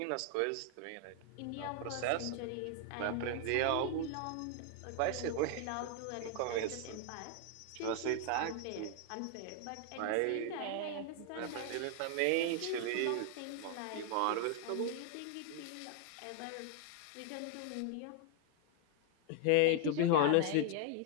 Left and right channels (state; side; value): different; both; correlation 0.00